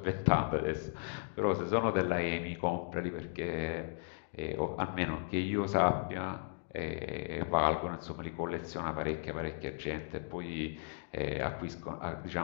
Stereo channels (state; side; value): silent; right; digital silence